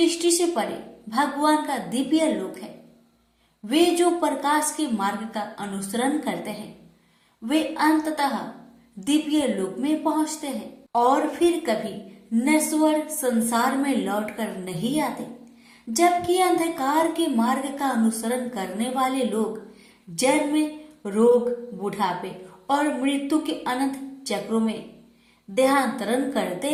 से परे भगवान का दिव्य लोक है। वे जो प्रकाश के मार्ग का अनुसरण करते हैं, वे अंततः दिव्य लोक में पहुंचते हैं और फिर कभी नश्वर संसार में लौटकर नहीं आते। जबकि अंधकार के मार्ग का अनुसरण करने वाले लोग जन्म, रोग, बुढ़ापे और मृत्यु के अनंत चक्रों में देहांतरण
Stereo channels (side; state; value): both; identical; correlation 1.00